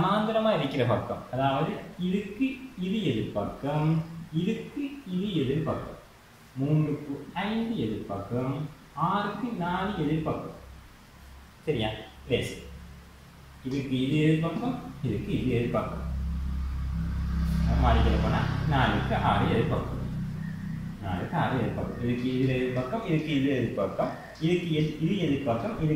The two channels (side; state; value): both; identical; correlation 1.00